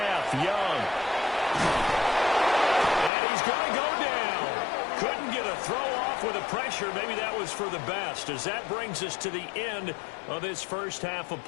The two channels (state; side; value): drops out; right; at 3.1 s